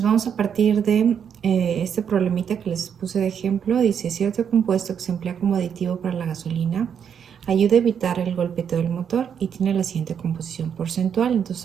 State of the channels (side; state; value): left; quieter; 7.8 dB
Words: vamos a partir de este problemita que les puse de ejemplo. Dice, cierto compuesto que se emplea como aditivo para la gasolina ayuda a evitar el golpeteo del motor y tiene la siguiente composición porcentual.